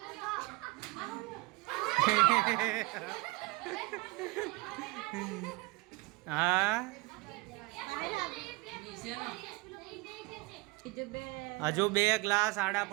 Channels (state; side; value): quieter; left; 24.5 dB